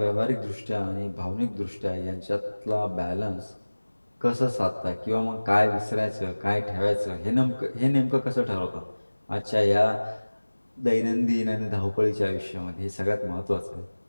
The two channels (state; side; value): inverted; both; correlation -1.00